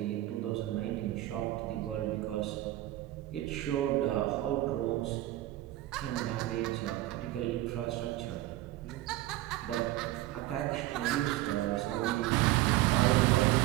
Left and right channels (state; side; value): quieter; left; 16.0 dB